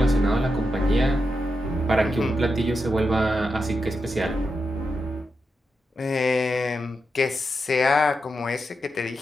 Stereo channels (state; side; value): normal; both; correlation 0.87